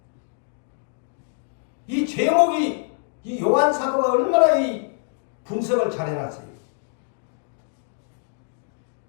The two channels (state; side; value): silent; right; digital silence